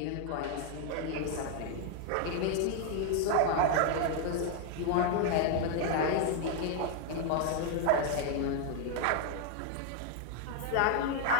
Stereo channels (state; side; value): different; both; correlation 0.00